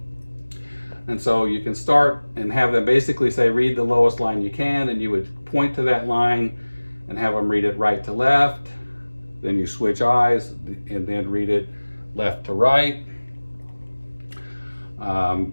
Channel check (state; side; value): inverted; both; correlation -1.00